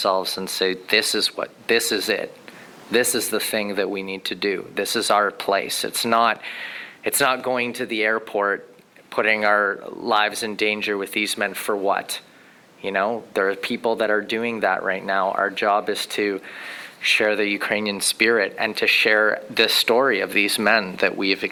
and say, this is it. This is the thing that we need to do. This is our place. It's not going to the airport, putting our lives in danger with these men for what? There are people that are doing that right now. Our job is to share the Ukrainian spirit and to share the story of these men that we have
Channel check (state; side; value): identical; both; correlation 1.00